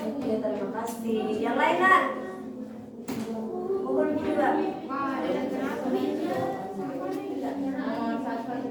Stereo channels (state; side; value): identical; both; correlation 1.00